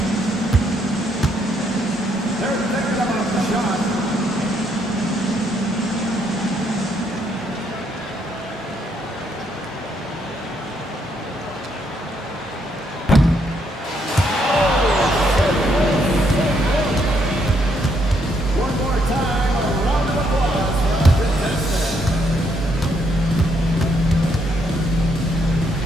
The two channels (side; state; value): both; normal; correlation 0.73